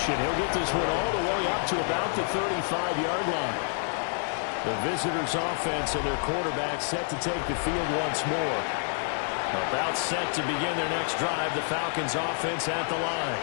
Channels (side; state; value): right; silent; 59 dB below the other